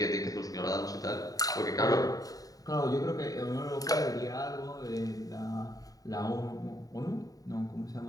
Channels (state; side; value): late; right; 0.18 ms